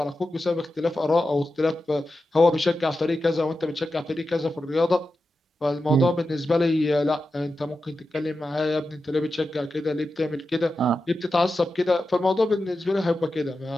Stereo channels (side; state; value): both; normal; correlation 0.91